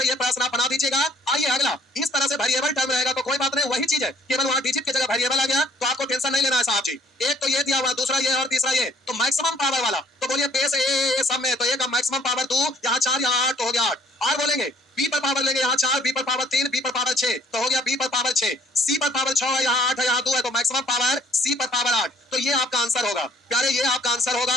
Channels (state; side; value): normal; both; correlation 0.58